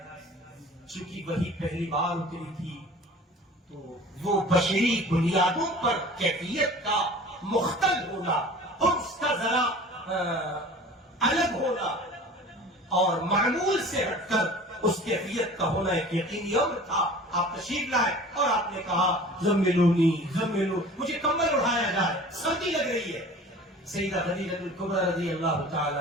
چونکہ وہی پہلی بار اتری تھی تو وہ بشری بنیادوں پر کیفیت کا مختل ہونا، اس کا ذرا الگ ہونا اور معمول سے ہٹ کر اس کیفیت کا ہونا ایک یقینی امر تھا۔ آپ تشریف لائے اور آپ نے کہا زملونی زملو، مجھے کمبل اڑایا جائے، سردی لگ رہی ہے۔ سیدہ خدیجہ الکبریٰ رضی اللہ تعالی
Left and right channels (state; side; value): normal; both; correlation 0.43